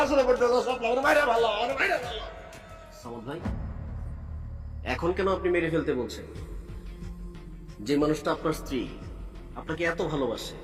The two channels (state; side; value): identical; both; correlation 1.00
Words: আসলে পড়তে চাও শাপলা, আমার মায়েরা ভালো, আমার মায়েরা ভালো। সামদ ভাই, এখন কেন আপনি মেরে ফেলতে বলছেন? যে মানুষটা আপনার স্ত্রী, আপনাকে এত ভালোবাসে,